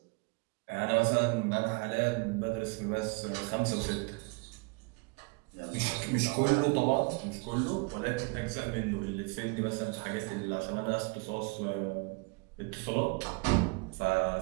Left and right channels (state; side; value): quieter; left; 29.8 dB